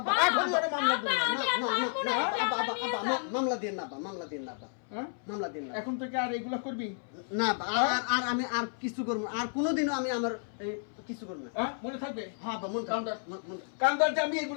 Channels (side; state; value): right; silent; 57 dB below the other